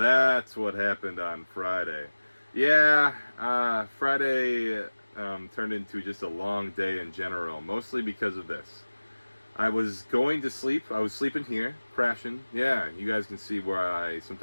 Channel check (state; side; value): inverted; both; correlation -1.00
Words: what happened on Friday. Yeah, Friday turned into just a long day in general, mostly because of this. I was going to sleep. I was sleeping here, crashing. Yeah, you guys can see where I